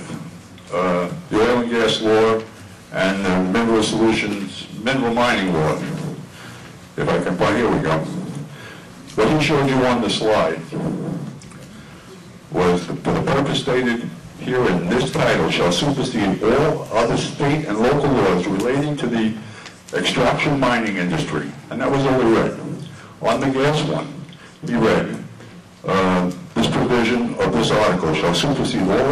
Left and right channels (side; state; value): both; identical; correlation 1.00